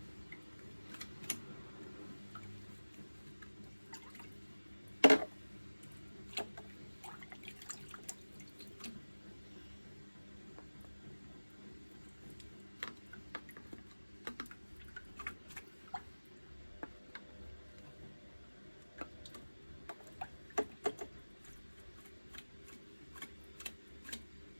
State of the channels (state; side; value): inverted; both; correlation -1.00